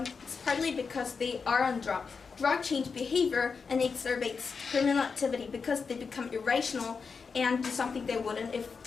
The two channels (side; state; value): right; quieter; 5.3 dB